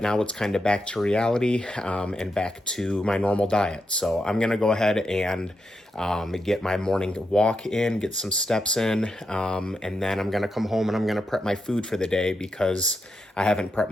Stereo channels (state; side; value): normal; both; correlation 0.85